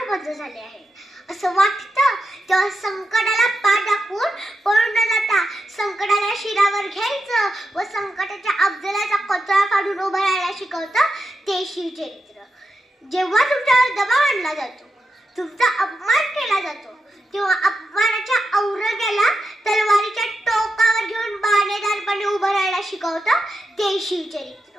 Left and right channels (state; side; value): normal; both; correlation 0.88